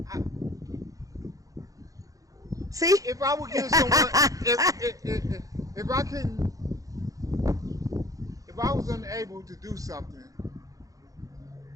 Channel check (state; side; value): late; left; 0.17 ms